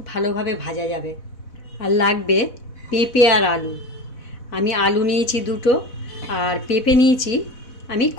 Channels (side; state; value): right; late; 4.1 ms